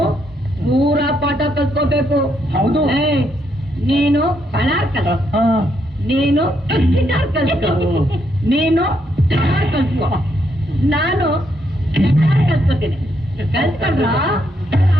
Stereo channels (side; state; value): both; normal; correlation 0.76